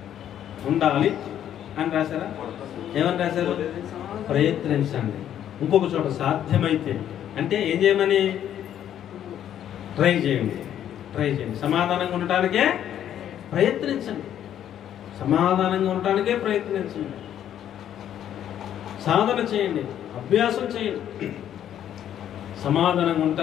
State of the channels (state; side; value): quieter; right; 10.5 dB